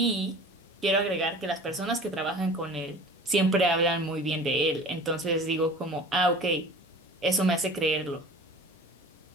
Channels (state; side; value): normal; both; correlation 0.41